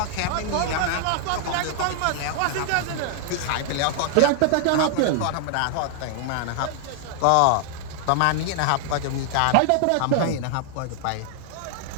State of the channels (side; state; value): both; different; correlation 0.00